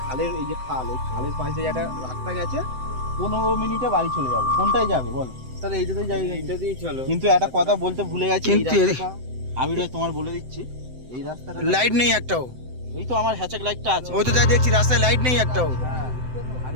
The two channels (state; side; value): late; left; 7.8 ms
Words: খালের এই যে খাল, এই খালের পাশে একটা রাস্তা গেছে, 15 মিনিটে বাড়ি চলে যাবো। কোনটায় যাবে বলো? তাহলে এইটাতেই যাই। এইটা দিয়েই চলো। কিন্তু একটা কথা বলতে ভুলে গেছি, এই কিন্তু রাস্তাটা আমি তোমার বলে দিচ্ছি, এই রাস্তাটা লাইট নেই একটাও। এই তো আমার হ্যাচাক লাইটটা আছে। ওই তো যাই দেখছি রাস্তায় লাইট নেই একটাও। হ্যাঁ, আর